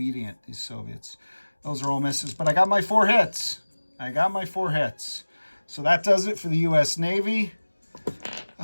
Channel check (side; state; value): both; inverted; correlation -1.00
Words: these Soviets. Those are all misses, but I got my 4 hits. I got my 4 hits. So that does it for the U.S. Navy.